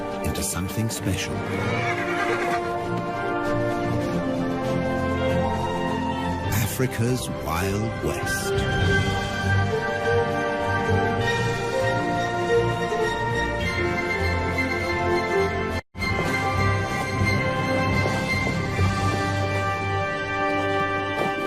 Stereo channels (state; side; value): identical; both; correlation 1.00